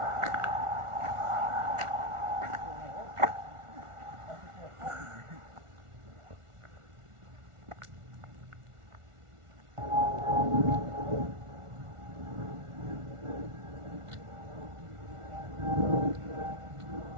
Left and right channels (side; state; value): left; late; 1.4 ms